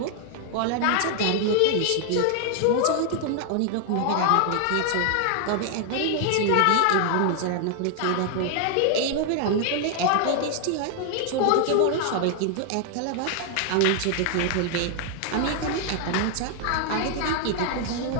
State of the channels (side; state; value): both; different; correlation 0.00